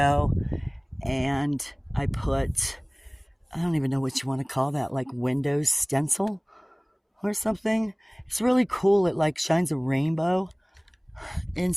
And I put, I don't even know what you want to call that, like window stencil or something. It's really cool. It like shines a rainbow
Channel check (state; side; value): identical; both; correlation 1.00